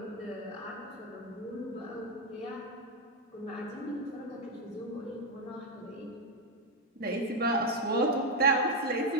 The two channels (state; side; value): normal; both; correlation 0.05